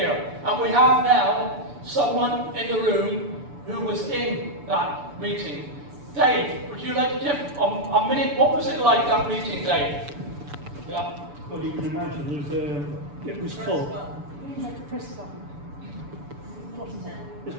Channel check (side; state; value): left; late; 6.9 ms